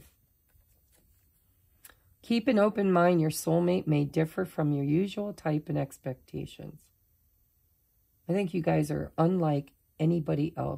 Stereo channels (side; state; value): both; identical; correlation 1.00